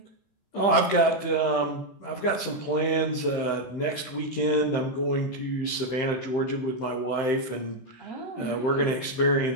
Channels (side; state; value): right; late; 15 ms